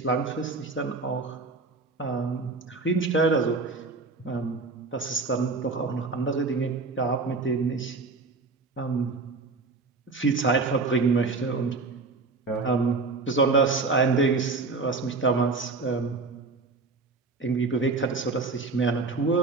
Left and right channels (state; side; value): quieter; left; 3.8 dB